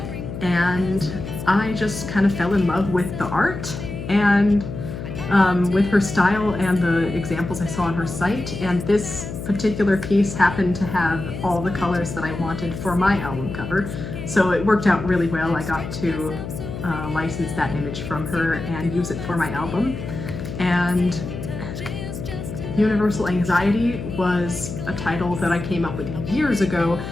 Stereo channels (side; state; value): left; noise; hum, 8 dB below the sound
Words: And I just kind of fell in love with the art and with her style and the examples I saw on her site. And this particular piece happened to have all the colors that I wanted for my album cover. So it worked out really well. I got to license that image from her and use it for my album. And Universal Anxiety was a title that I came up with years ago.